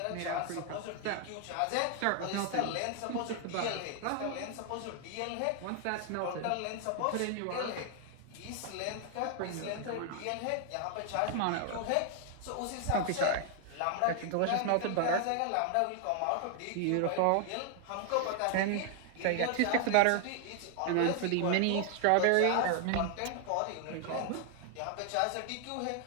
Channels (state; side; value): different; both; correlation 0.00